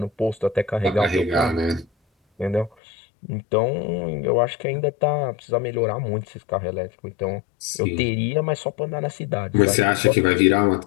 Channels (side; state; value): right; drops out; at 2.7 s